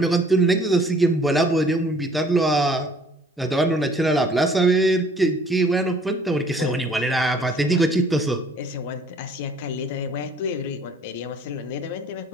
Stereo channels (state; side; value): normal; both; correlation 0.57